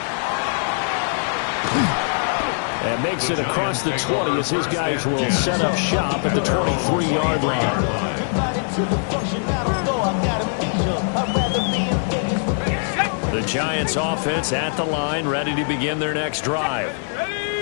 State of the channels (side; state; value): right; silent; digital silence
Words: And makes it across the 20 as his guys will set up shop at the 23-yard line. The Giants offense at the line, ready to begin their next drive.